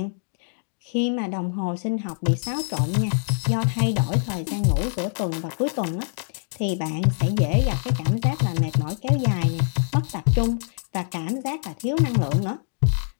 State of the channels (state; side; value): silent; right; digital silence